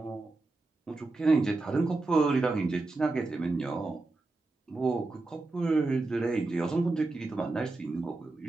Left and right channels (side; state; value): left; quieter; 3.3 dB